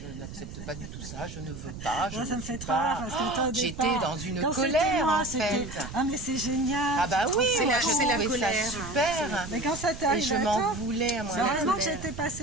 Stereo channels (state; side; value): noise; right; rumble, 11 dB below the sound